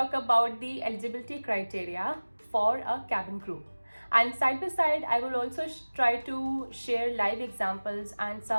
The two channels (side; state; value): both; inverted; correlation -1.00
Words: about the eligibility criteria for a cabin crew. And side by side, I will also try to share live examples and